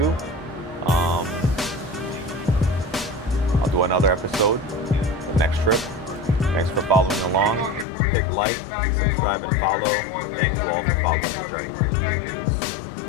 I'll do another episode, the next trip. Thanks for following along. Hit like, subscribe, and follow. Thank you all for following the journey. Peace.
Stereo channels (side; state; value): right; drops out; at 7.9 s